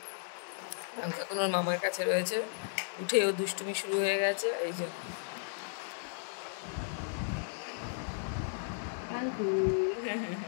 পাঙ্খু এখন ওর মামার কাছে রয়েছে। উঠে ও দুষ্টুমি শুরু হয়ে গেছে। এই যে পাঙ্খু,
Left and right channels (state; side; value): silent; right; 55 dB below the other